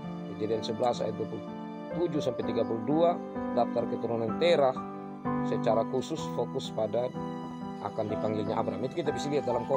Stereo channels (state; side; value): identical; both; correlation 1.00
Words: Kejadian 11 ayat 27 sampai 32, daftar keturunan Terah secara khusus fokus pada akan dipanggilnya Abram. Itu kita bisa lihat dalam